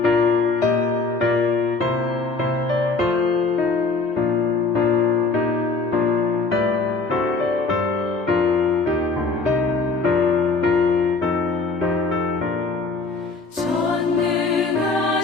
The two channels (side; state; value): right; quieter; 3.9 dB